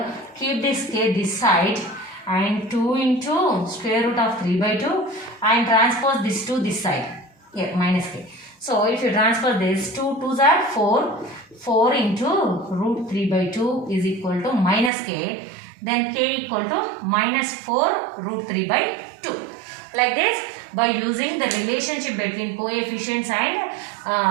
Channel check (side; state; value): left; drops out; at 14.9 s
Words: keep this k this side. And 2 into square root of 3 by 2 and transpose this to this side. Here minus k. So if you transpose this, 2 2s are 4. 4 into root 3 by 2 is equal to minus k. Then k equal to minus 4 root 3 by 2. Like this, by using the relationship between coefficients